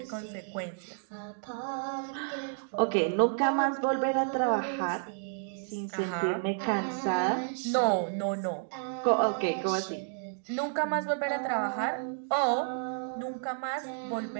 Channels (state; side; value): silent; left; digital silence